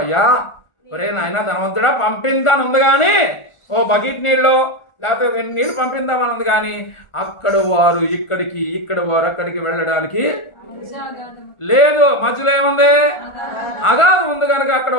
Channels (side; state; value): right; late; 1.4 ms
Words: అయ్యా ఒరే నాయన ధనవంతుడా, పంపిందాని ఉంది కానీ ఓ బకెట్ నీళ్ళు లేకపోతే నీళ్ళు పంపిందామని ఉంది కానీ అక్కడ వారు ఇక్కడికి, ఇక్కడ వారు అక్కడికి వెళ్ళడానికి లేదు. మధ్యలో ఏముంది? అగాధం ఉంది కనుక అక్కడ